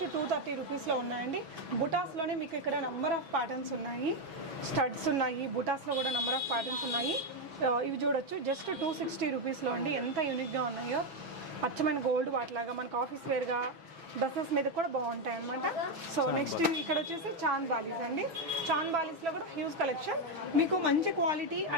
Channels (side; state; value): left; late; 6.1 ms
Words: 230 రూపీస్లో ఉన్నాయండి. బుటాస్లోనే మీకు ఇక్కడ నెంబర్ ఆఫ్ ప్యాటర్న్స్ ఉన్నాయి. స్టడ్స్ ఉన్నాయి, బుటాస్లో కూడా నెంబర్ ఆఫ్ ప్యాటర్న్స్ ఉన్నాయి. ఇవి చూడొచ్చు, జస్ట్ 260 రూపీస్లో అండి. ఎంత యూనిక్గా ఉన్నాయో, అచ్చమైన గోల్డ్ వాటిలాగా మనకు ఆఫీస్ వేర్గా డ్రెస్సెస్ మీద కూడా బాగుంటాయి అనమాట. సో నెక్స్ట్ ఇక్కడ వచ్చేసి చాంద్ బాలీస్ అండి. చాంద్ బాలీస్లో కూడా హ్యూజ్ కలెక్షన్. మీకు మంచి క్వాలిటీ